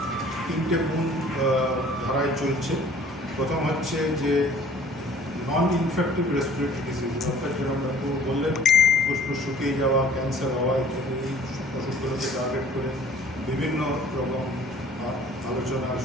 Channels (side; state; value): both; normal; correlation 0.52